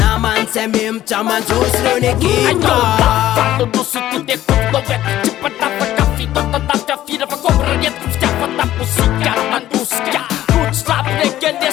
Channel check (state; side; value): quieter; right; 13.5 dB